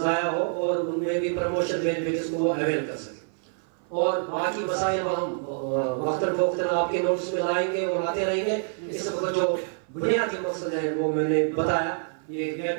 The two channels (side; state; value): left; silent; 56 dB below the other